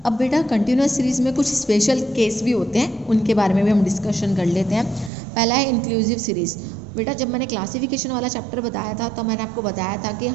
अब बेटा कंटिन्यूस सीरीज़ में कुछ स्पेशल केस भी होते हैं, उनके बारे में भी हम डिस्कशन कर लेते हैं। पहला है इंक्लूसिव सीरीज़। बेटा जब मैंने क्लासिफिकेशन वाला चैप्टर बताया था तो मैंने आपको बताया था कि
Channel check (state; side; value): drops out; left; at 5.1 s